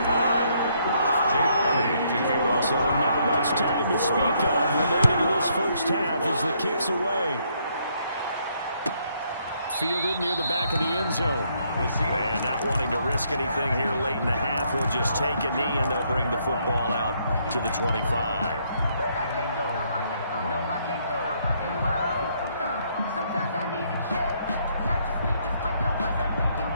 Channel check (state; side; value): inverted; both; correlation -0.71